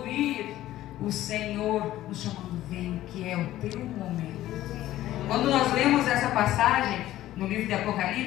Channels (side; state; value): right; quieter; 14.3 dB